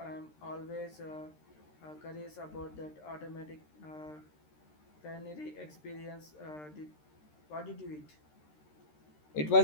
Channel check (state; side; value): late; right; 13 ms